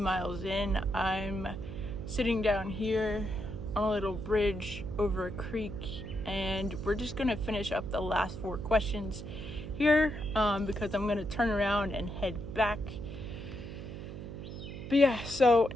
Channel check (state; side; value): noise; right; hum, 9 dB below the sound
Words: in. I'm sitting down here on a little bridge over a creek, and we're just gonna finish up the last 4 questions here because I'm gonna turn around and head back. But yeah, so